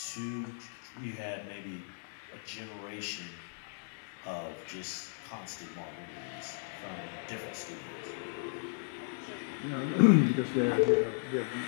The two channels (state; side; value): silent; right; digital silence